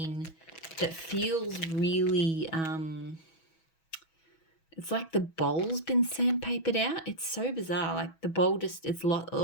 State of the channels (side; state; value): right; late; 6.2 ms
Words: that feels really, it's like the bowl's been sandpapered out. It's so bizarre. Like the bowl just,